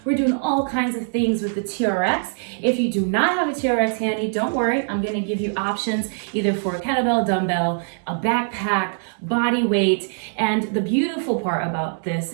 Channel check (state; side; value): silent; left; digital silence